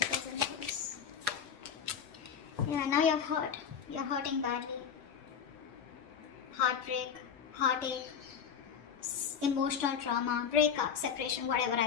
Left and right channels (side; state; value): right; quieter; 7.3 dB